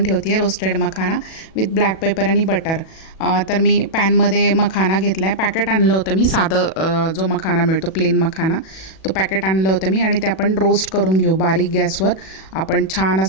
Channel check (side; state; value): right; late; 37 ms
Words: ठेवते आहे roasted makhana with black paper आणि बटर। तर मी पॅनमध्ये मखाना घेतला आहे, पॅकेट आणलं होतं मी, साधं जो मखाना मिळतो प्लेन मखाना, तो पॅकेट आणलं होतं मी आणि ते आपण रोस्ट करून घेऊ बारीक गॅसवर। आपण छान